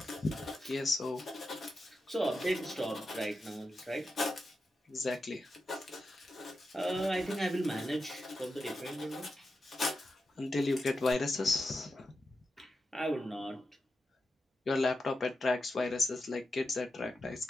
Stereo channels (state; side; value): normal; both; correlation 0.89